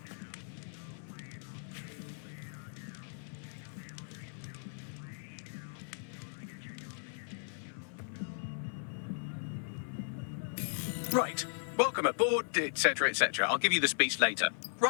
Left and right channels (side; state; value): right; silent; 53 dB below the other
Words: Right. Welcome aboard, etc., etc. I'll give you the speech later.